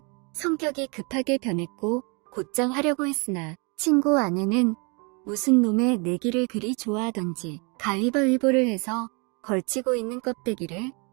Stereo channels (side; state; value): left; quieter; 32.3 dB